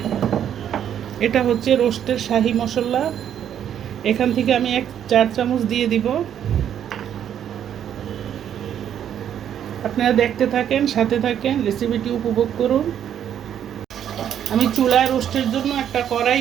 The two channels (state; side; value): quieter; left; 9.6 dB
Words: এটা হচ্ছে রোস্টের শাহি মশলা। এখান থেকে আমি 4 চামচ দিয়ে দিব। আপনারা দেখতে থাকেন, সাথে থাকেন, রেসিপিটি উপভোগ করুন। আমি চুলায় রোস্টের জন্য একটা কড়াই